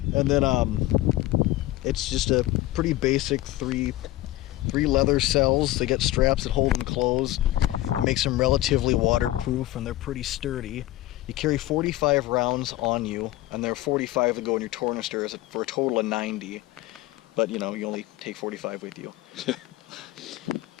And then it's just a pretty basic three leather cells. They get straps that hold them closed. It makes them relatively waterproof, and they're pretty sturdy. You carry 45 rounds on you, and there are 45 that go in your tornister for a total of 90. But you know, you only take 45 with you.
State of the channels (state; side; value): quieter; right; 16.4 dB